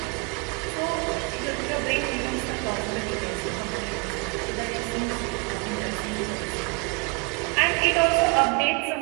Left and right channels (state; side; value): quieter; left; 32.7 dB